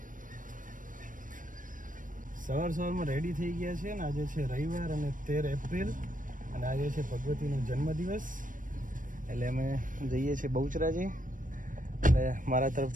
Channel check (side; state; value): left; late; 0.38 ms